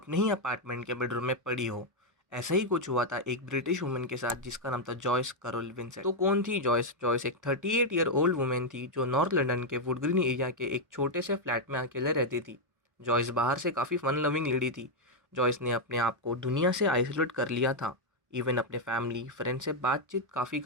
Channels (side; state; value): left; late; 1.2 ms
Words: ही अपार्टमेंट के बेडरूम में पड़ी हो। ऐसा ही कुछ हुआ था एक ब्रिटिश वुमेन के साथ जिसका नाम था जॉयस कैरोल विंसेंट। तो कौन थी जॉयस? जॉयस एक 38 ईयर ओल्ड वुमेन थी जो नॉर्थ लंदन के वुडग्रीन एरिया के एक छोटे से फ्लैट में अकेले रहती थी। जॉयस बाहर से काफ़ी फन लविंग लेडी थी। जॉयस ने अपने आप को दुनिया से आइसोलेट कर लिया था। इवन अपने फैमिली फ्रेंड से बातचीत काफ़ी